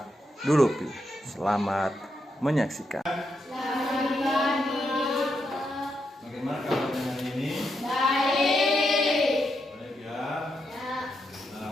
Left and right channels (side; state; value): both; normal; correlation 0.82